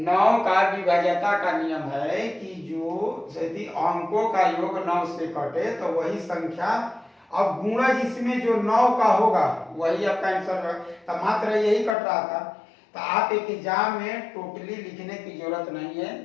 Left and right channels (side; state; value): right; drops out; at 12.0 s